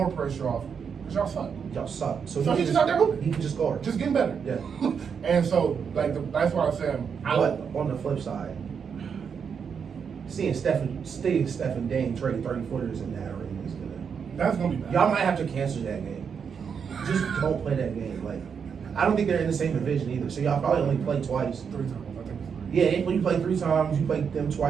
pressure off because y'all suck. Y'all suck. So he's just out there hooping. He can just score. Just getting better. Yeah. And so, that's why I'm saying. But on the flip side, seeing Steph and Dame trade 30-footers in that arena is gonna. That's gonna be bad. Y'all might have to cancel that game. Just don't play that game. Like, I don't think they're in the same division either. So y'all probably only play twice. 3 times, I think. Yeah, when you play 3 times, you play them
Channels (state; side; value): quieter; left; 6.7 dB